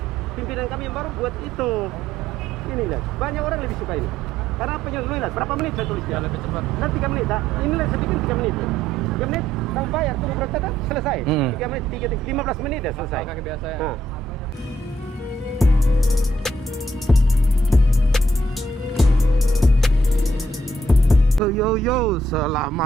pimpinan kami yang baru buat itu. Ini lihat, banyak orang lebih suka ini. Karena penyelesaian, berapa menit saya tulis Ya, lebih cepat. Nanti 3 menit, inilah saya bikin 3 menit. 3 menit, kamu bayar, tunggu berapa dah, selesai. 3 menit, 15 menit dah selesai. Kaki biasa ya. Nah. Yo,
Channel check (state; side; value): normal; both; correlation 0.71